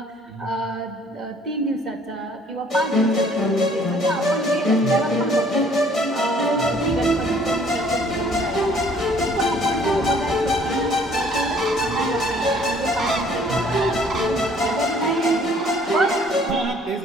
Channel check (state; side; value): normal; both; correlation 0.58